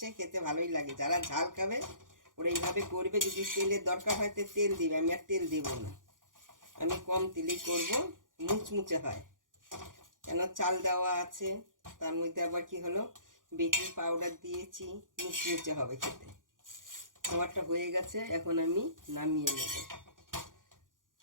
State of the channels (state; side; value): late; left; 0.89 ms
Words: খেতে ভালোই লাগে। যারা ঝাল খাবে ওরা এইভাবে করবে। যদি তেলের দরকার হয় তো তেল দিবে, আমি আর তেল দেব না। আমি কম তেলেই করব, মুচমুচে হয়। কেন চাল দেওয়া আছে, তার মধ্যে আবার কি হলো বেকিং পাউডার দিয়েছি, মুচমুচে হবে খেতে। খাবারটা হয়ে গেছে, এখন আমি নামিয়ে নেব।